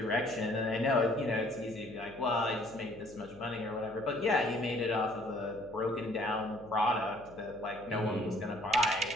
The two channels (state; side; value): noise; left; hum, 21 dB below the sound